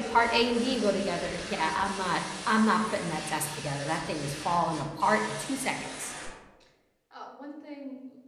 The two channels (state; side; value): identical; both; correlation 1.00